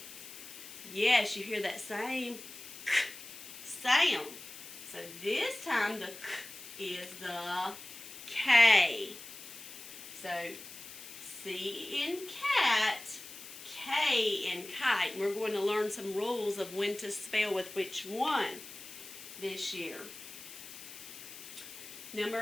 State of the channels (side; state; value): left; noise; hiss, 14 dB below the sound